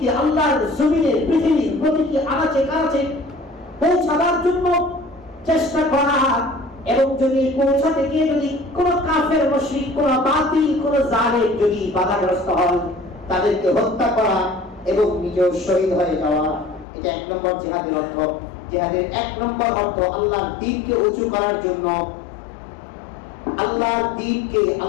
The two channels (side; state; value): right; drops out; at 16.9 s